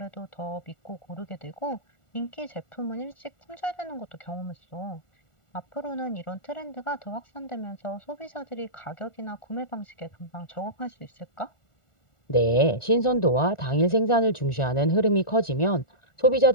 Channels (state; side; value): late; right; 1.4 ms